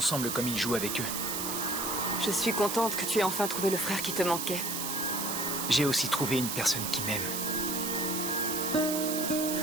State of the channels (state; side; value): noise; right; hiss, 2 dB below the sound